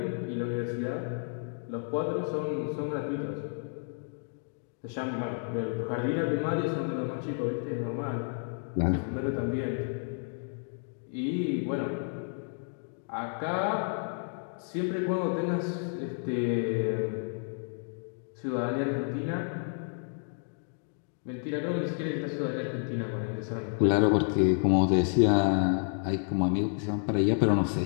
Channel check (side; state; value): right; silent; 57 dB below the other